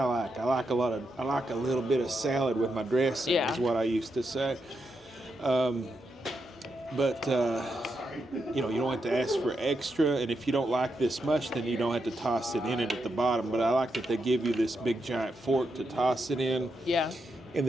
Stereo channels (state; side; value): normal; both; correlation 0.84